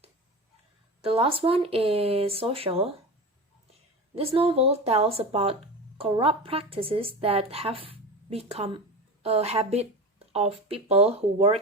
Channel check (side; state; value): both; normal; correlation 0.28